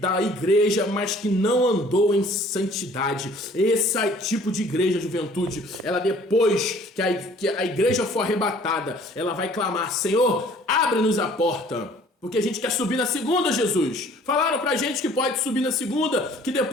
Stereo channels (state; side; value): normal; both; correlation 0.54